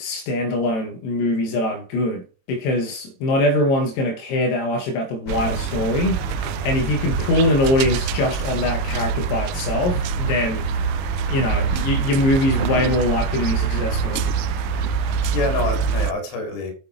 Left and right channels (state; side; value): late; right; 22 ms